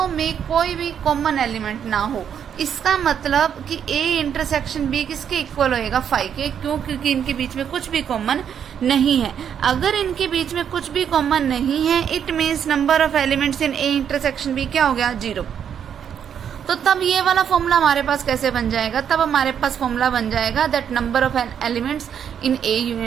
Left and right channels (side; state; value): left; quieter; 8.4 dB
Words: में कोई भी कॉमन एलिमेंट ना हो। इसका मतलब कि a इंटरसेक्शन b किसके इक्वल होएगा 5 के। क्यों? क्योंकि इनके बीच में कुछ भी कॉमन नहीं है। अगर इनके बीच में कुछ भी कॉमन नहीं है, it means number of elements in a intersection b क्या हो गया 0। तो तब ये वाला फॉर्मूला हमारे पास कैसे बन जाएगा, तब हमारे पास फॉर्मूला बन जाएगा that number of elements in a